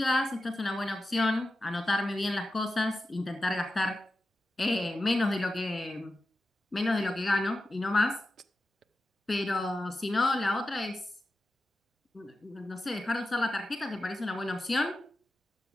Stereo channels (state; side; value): normal; both; correlation 0.92